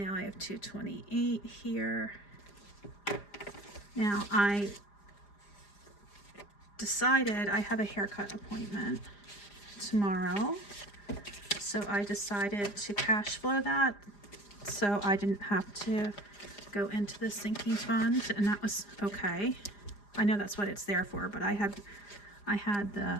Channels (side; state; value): right; late; 4.9 ms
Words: I have $2.28 here. Now I decided I have a haircut appointment tomorrow. So I decided to cash flow that so I didn't have to go into the sinking fund, and that was okay. I know that's what it's there for, but I had